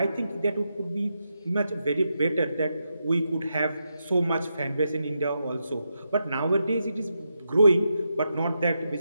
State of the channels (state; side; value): inverted; both; correlation -0.85